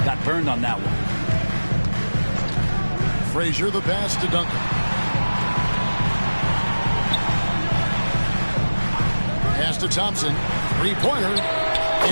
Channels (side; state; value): both; inverted; correlation -1.00